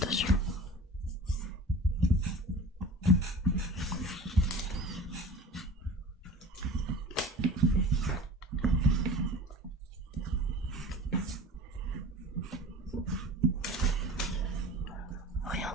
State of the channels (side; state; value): both; normal; correlation 0.39